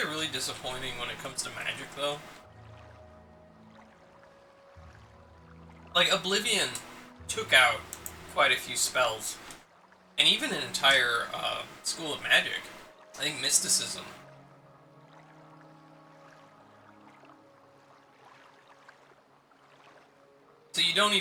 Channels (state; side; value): identical; both; correlation 1.00